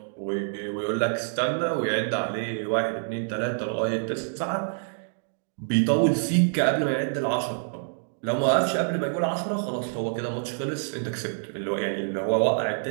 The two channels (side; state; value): left; silent; digital silence